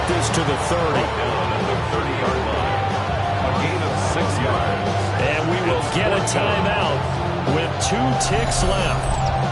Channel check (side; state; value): both; identical; correlation 1.00